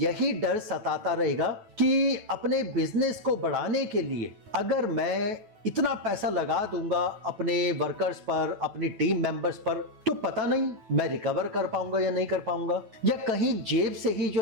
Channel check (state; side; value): late; left; 9.2 ms